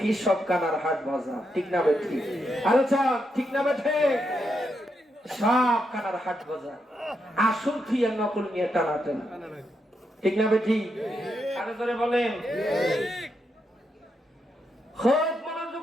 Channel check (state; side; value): normal; both; correlation 0.82